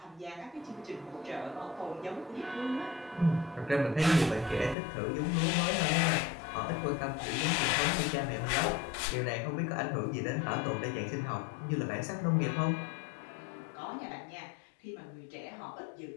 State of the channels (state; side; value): drops out; right; at 4.8 s